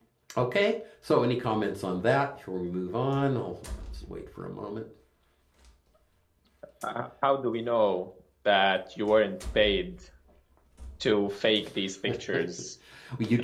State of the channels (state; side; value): identical; both; correlation 1.00